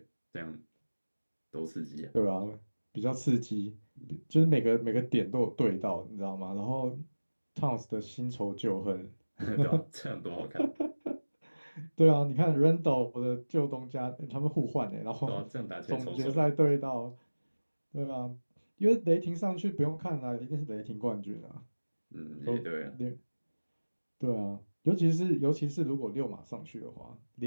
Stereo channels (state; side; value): inverted; both; correlation -1.00